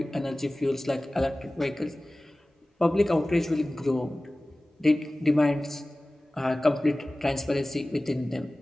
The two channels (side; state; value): both; normal; correlation 0.98